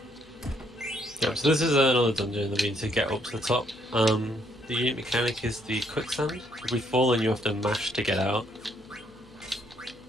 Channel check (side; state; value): left; noise; hum, 26 dB below the sound